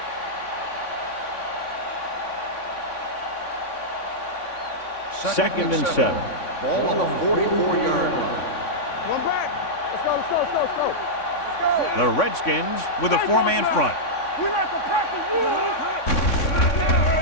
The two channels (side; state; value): right; late; 3.6 ms